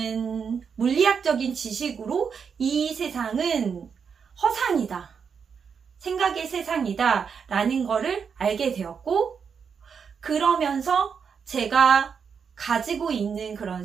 물리학적인 지식으로 이 세상은 허상이다, 생각의 세상이다 라는 거를 알게 되었고, 그러면서 제가 가지고 있는 그런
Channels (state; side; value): quieter; left; 6.4 dB